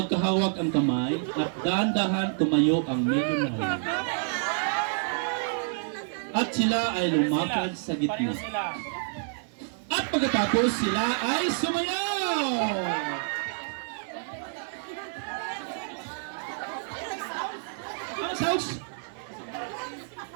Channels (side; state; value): left; silent; 55 dB below the other